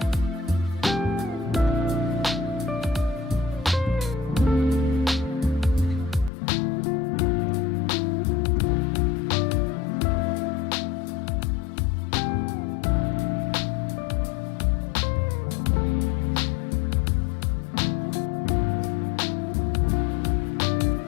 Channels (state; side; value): drops out; right; at 6.3 s